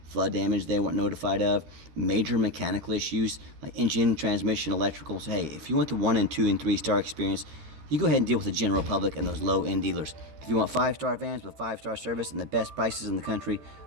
flood damage they weren't notified of, major mechanical issues like engine, transmission, electrical. So hey, if you want the 1 and 2 and 3-star experience, you go ahead and deal with the general public and those low-end dealers. If you want 5-star vans with 5-star service and the best prices in the country,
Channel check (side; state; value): left; late; 13 ms